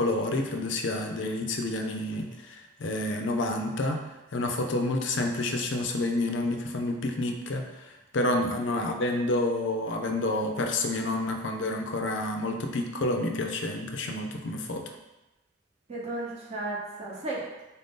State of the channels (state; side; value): normal; both; correlation 0.34